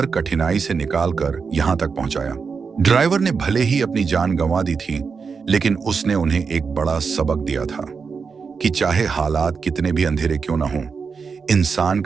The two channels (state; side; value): quieter; left; 5.4 dB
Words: कठिनाई से निकालकर यहां तक पहुंचाया। ड्राइवर ने भले ही अपनी जान गंवा दी थी, लेकिन उसने उन्हें एक बड़ा सबक दिया था कि चाहे हालात कितने भी अंधेरे क्यों ना हों, इंसान